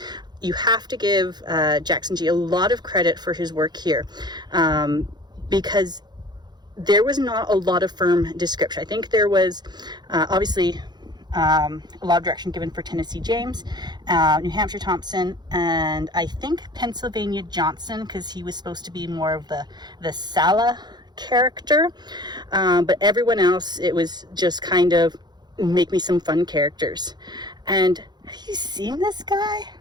you have to give Jackson G a lot of credit for his work here, because there was not a lot of firm description. I think there was obviously a lot of direction given for Tennessee James, New Hampshire Thompson, and I think Pennsylvania Johnson, because he was supposed to be more of the Sala character, but everyone else, it was just kind of make me some fun characters. And have you seen this guy?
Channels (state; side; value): late; left; 0.21 ms